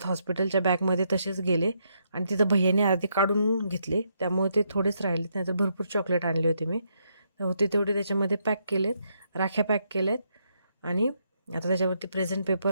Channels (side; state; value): both; inverted; correlation -0.77